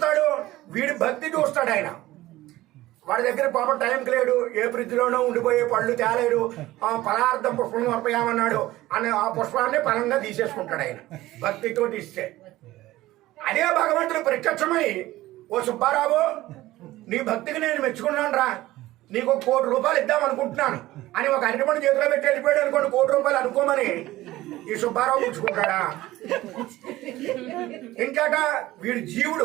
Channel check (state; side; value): quieter; left; 16.7 dB